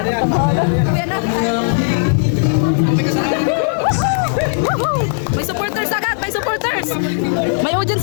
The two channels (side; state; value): right; silent; digital silence